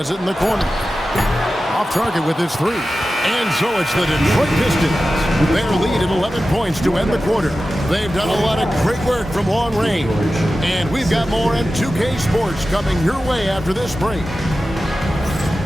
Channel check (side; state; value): both; normal; correlation 0.94